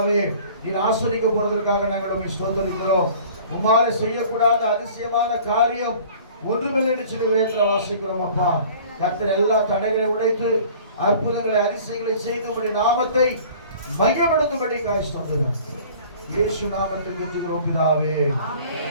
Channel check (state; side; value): inverted; both; correlation -0.48